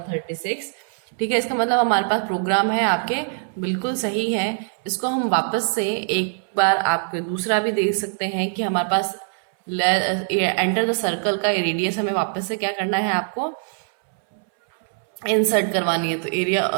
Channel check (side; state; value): left; silent; 64 dB below the other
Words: ठीक है, इसका मतलब हमारे पास प्रोग्राम है आपके बिल्कुल सही है। इसको हम वापस से एक बार आपके दूसरा भी देख सकते हैं कि हमारे पास एंटर द सर्कल का रेडियस हमें वापस से क्या करना है, आपको इंसर्ट करवानी है। तो एरिया